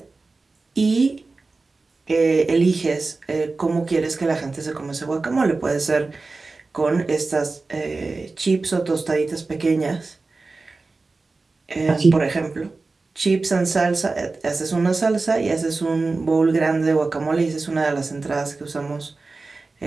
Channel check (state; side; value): quieter; left; 3.7 dB